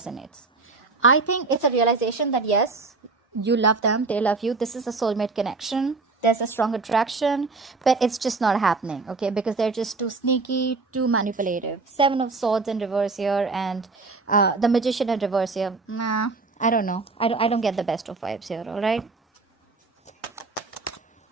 I think it's a realization that yes, you love them, they love you. This is a soulmate connection. There's a strong attraction, but it's just not happening. Okay, because they're just too sneaky, too manipulative. Seven of Swords in reverse here, and the Magician in reverse here. Nah, I don't know. I don't get the best of vibes here. All right.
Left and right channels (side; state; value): left; quieter; 3.9 dB